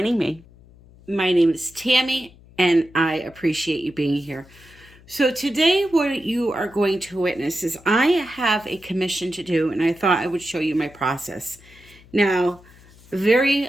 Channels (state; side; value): noise; left; hum, 25 dB below the sound